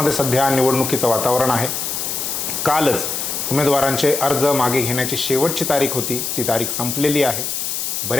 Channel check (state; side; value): noise; left; hiss, 3 dB below the sound